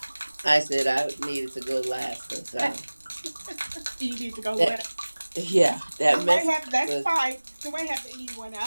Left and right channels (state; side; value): inverted; both; correlation -1.00